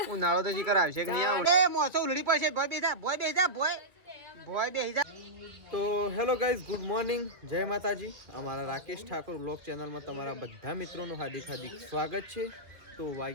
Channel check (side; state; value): left; late; 2.5 ms